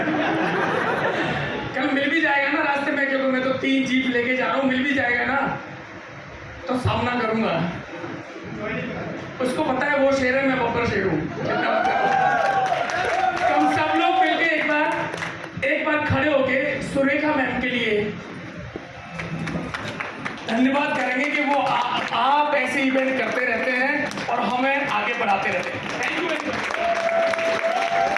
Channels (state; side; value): identical; both; correlation 1.00